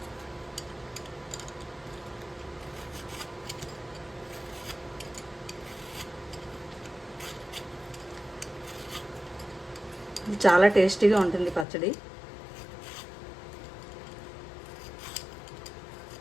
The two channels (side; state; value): right; drops out; at 11.7 s